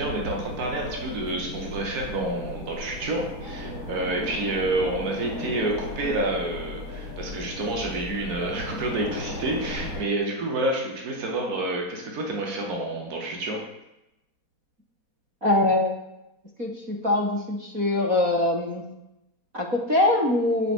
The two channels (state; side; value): late; left; 4.2 ms